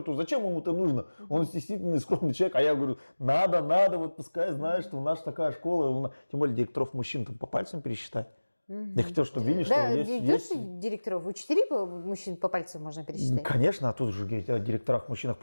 зачем ему это нужно? Он стеснительный, скромный человек. А я говорю, надо, вот пускай знает, что у нас такая школа. Тем более директоров мужчин там по пальцам пересчитать. Я хотел, чтобы видели, что Да, есть... директоров, учителей мужчин по пальцам можно пересчитать. Конечно, а тут же говорить о директорах-мужчинах.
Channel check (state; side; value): inverted; both; correlation -1.00